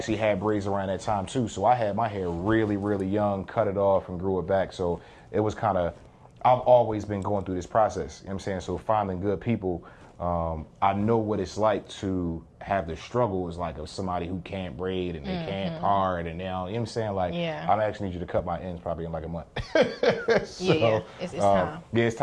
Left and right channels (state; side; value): identical; both; correlation 1.00